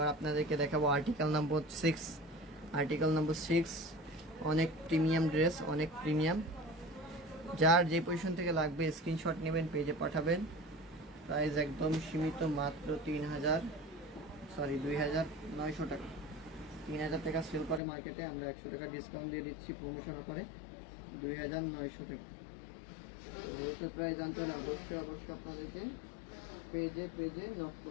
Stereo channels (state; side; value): drops out; right; at 17.8 s